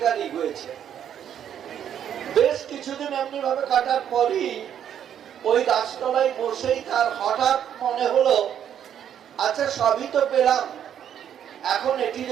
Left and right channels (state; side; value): quieter; left; 9.5 dB